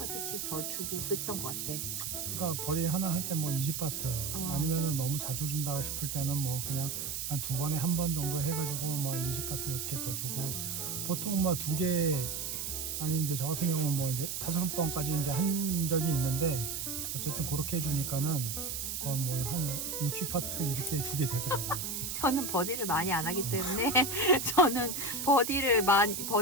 더 주고 그랬던 것 같아. 그러니까 버디 하나 할 때 뭐 20바트 아니면은 너무 자주 준다 싶을 때는 뭐 그냥 한 2번에 1번 정도 해가지고 뭐 20바트 이렇게 더 주고 보통 뭐 2개 아니 이제 저 같은 경우는 뭐 이제 5번까지 이제 한 적이 있는데 어쨌든 그렇게 해주니까는 거의 뭐 한 60파트 이렇게 주게 되더라고요. 저는 버디를 많이 안 하기 때문에 저는 버디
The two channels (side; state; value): right; noise; hiss, 3 dB below the sound